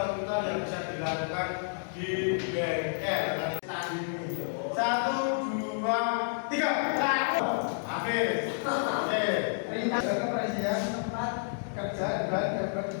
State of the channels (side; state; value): right; silent; digital silence